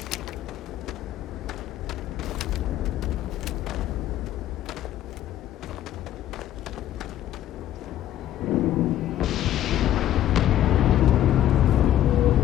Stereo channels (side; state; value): right; quieter; 12.2 dB